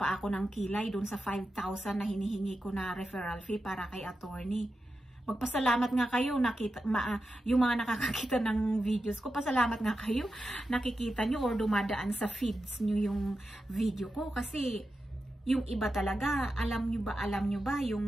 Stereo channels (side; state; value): both; normal; correlation 0.90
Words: ako ng kilay dun sa 5,000 na hinihingi ko na referral fee para kay attorney. Magpasalamat nga kayo, yung mga nakakakita ng videos ko, pasalamat nga kayo, nakikita nyo or dumadaan sa feeds nyo yung video ko. Kasi yung iba talaga, alam nyo ba yung